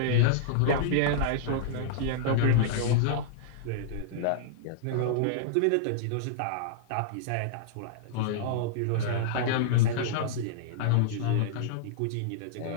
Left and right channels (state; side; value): different; both; correlation -0.02